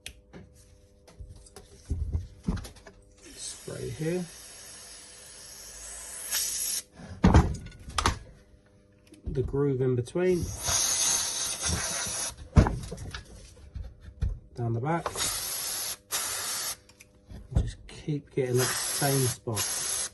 spray here, the groove in between, down the back, just keep getting that same spot.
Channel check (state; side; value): identical; both; correlation 1.00